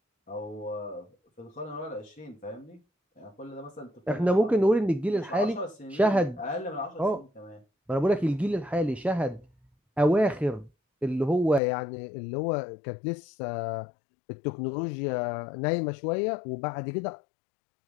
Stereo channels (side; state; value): right; drops out; at 11.6 s